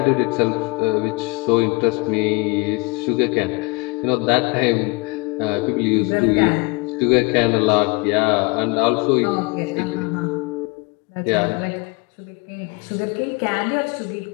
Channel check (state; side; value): quieter; right; 27.2 dB